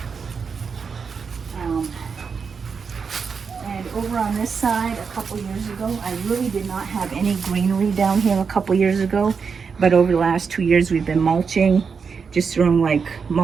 And over on this side, a couple years ago, I really did not have any greenery down here a couple years ago, but over the last 2 years we've been mulching, just throwing like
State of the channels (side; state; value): left; quieter; 5.7 dB